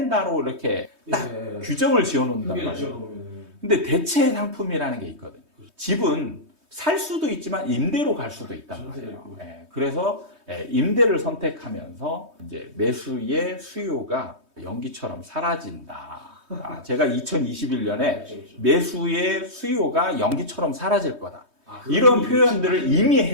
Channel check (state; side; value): late; left; 3.2 ms